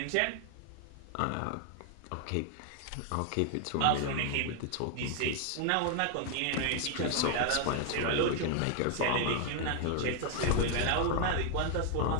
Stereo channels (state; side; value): different; both; correlation 0.00